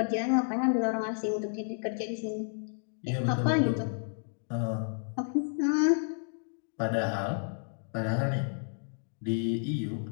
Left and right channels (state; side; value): silent; right; digital silence